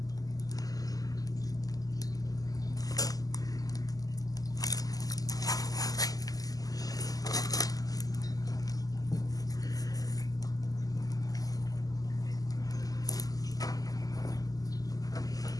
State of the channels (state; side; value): late; right; 0.17 ms